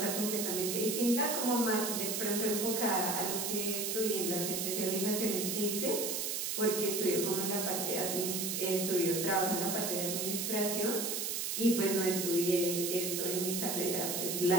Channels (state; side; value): noise; right; hiss, 1 dB below the sound